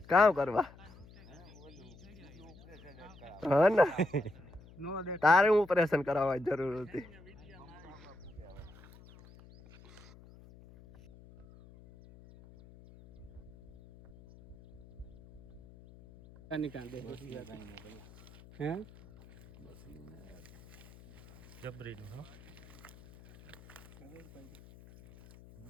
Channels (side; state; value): left; noise; hum, 21 dB below the sound